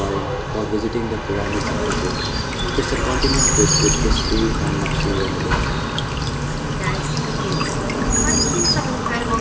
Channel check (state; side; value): identical; both; correlation 1.00